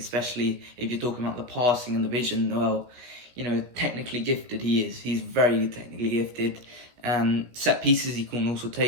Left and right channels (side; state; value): left; late; 17 ms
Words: if you're talking about the passing and the vision. Well, technically gifted he is. He's very technically gifted. Set pieces he can also